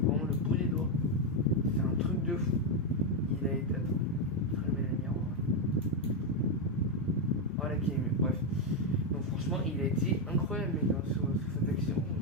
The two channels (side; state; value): both; normal; correlation 0.03